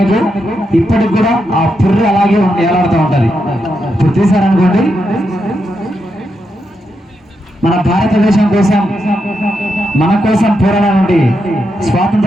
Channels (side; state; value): both; normal; correlation 0.84